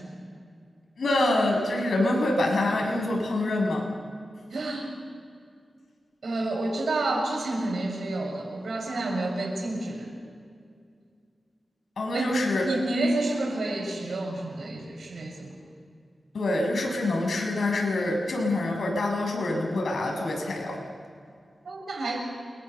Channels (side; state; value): both; normal; correlation 0.89